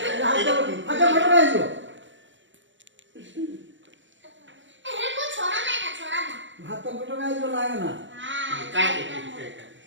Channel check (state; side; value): late; left; 0.55 ms